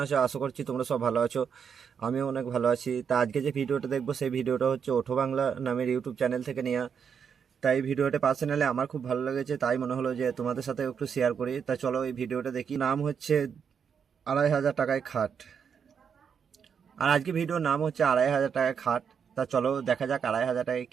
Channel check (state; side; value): quieter; left; 7.0 dB